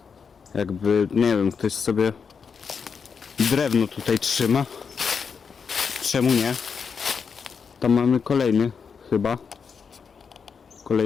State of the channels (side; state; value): right; quieter; 6.1 dB